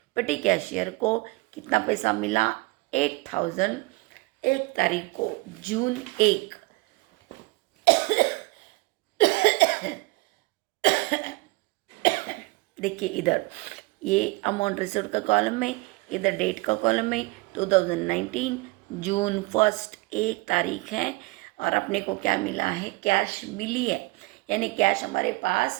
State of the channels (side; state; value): left; quieter; 24.0 dB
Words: पेटी कैशियर को कितना पैसा मिला? 8,000 1 तारीख को, जून 1। देखिए इधर ये अमाउंट रिसीव्ड का कॉलम में, इधर डेट का कॉलम में 2019 जून 1 1 तारीख है। और अपने को क्या मिला है? कैश मिली है, यानी कैश हमारे